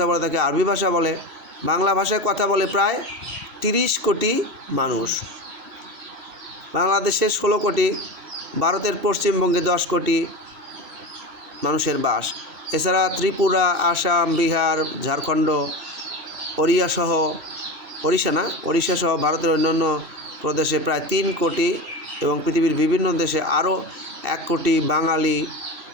বলে তাকে আরবি ভাষা বলে। বাংলা ভাষায় কথা বলে প্রায় 30 কোটি মানুষ। বাংলাদেশে 16 কোটি, ভারতের পশ্চিমবঙ্গে 10 কোটি মানুষের বাস। এছাড়া ত্রিপুরা, আসাম, বিহার, ঝাড়খণ্ড, ওড়িশা সহ ভারতের অন্যান্য প্রদেশে প্রায় 3 কোটি এবং পৃথিবীর বিভিন্ন দেশে আরও 1 কোটি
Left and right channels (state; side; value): late; left; 2.7 ms